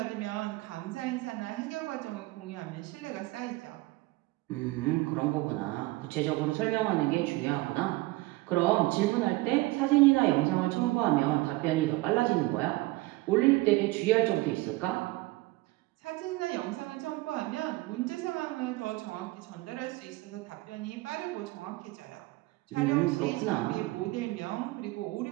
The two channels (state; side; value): quieter; left; 20.7 dB